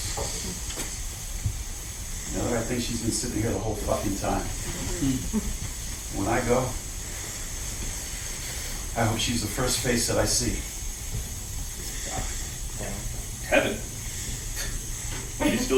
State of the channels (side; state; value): both; identical; correlation 1.00